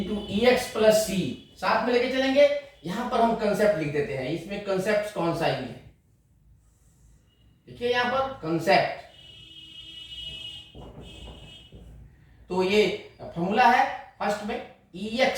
ex plus c। साथ में लेके चलेंगे। यहां पर हम कंसेप्ट लिख देते हैं, इसमें कंसेप्ट कौन सा ही है देखिए यहां पर कंसेप्ट। तो ये फॉर्मूला है फर्स्ट में ex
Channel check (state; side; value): identical; both; correlation 1.00